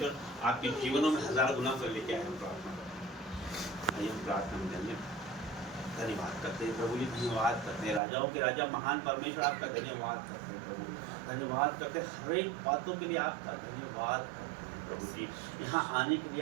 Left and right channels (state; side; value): drops out; left; at 8.0 s